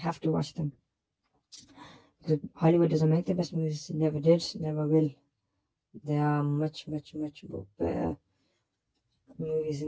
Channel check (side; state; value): both; identical; correlation 1.00